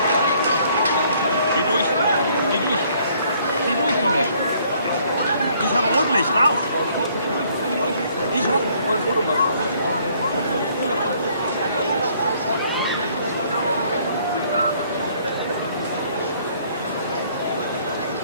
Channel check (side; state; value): both; inverted; correlation -0.63